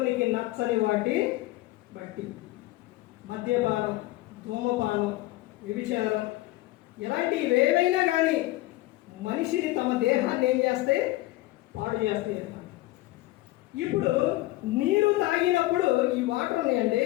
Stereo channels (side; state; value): right; quieter; 18.2 dB